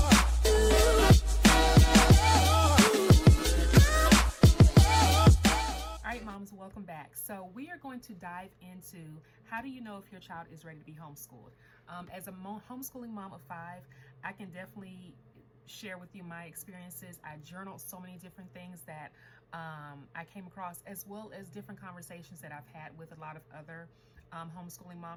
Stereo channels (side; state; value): both; identical; correlation 1.00